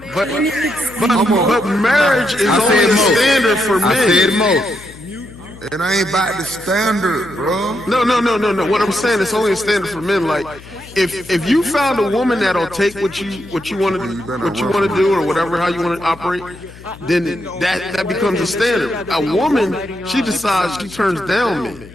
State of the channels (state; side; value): noise; left; hum, 19 dB below the sound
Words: But marriage is only a standard for men. I said most. It ain't about the standard, bro. No. What I'm saying, it's only a standard for men. Like, if you found a woman that'll take what you want to do or whatever, how you want to operate, then that becomes a standard. A woman, she decides she turns down men.